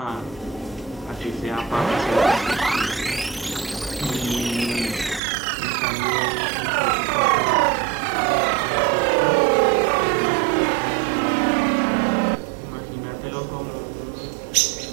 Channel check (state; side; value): drops out; left; at 5.2 s